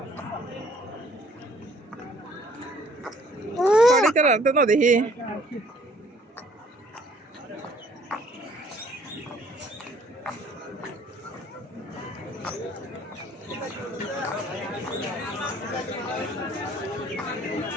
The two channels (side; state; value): both; normal; correlation 0.59